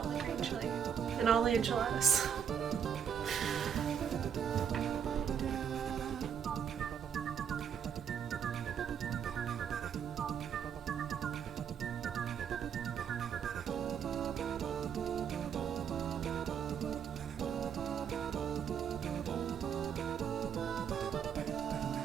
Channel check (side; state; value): left; quieter; 7.9 dB